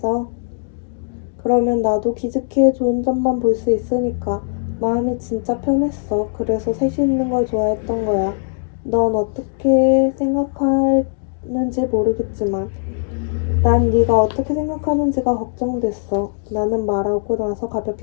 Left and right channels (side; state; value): right; silent; digital silence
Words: 그러면 나도 기즈키의 좋은 점만 볼 수 있으니까 마음이 진짜 편했어. 그래서 셋이 있는 걸 좋아했던 거야. 넌 어떻게 생각하는지 모르겠지만 난 네가 어떻게 생각하는지가 걱정됐어. 나는 말하고 나서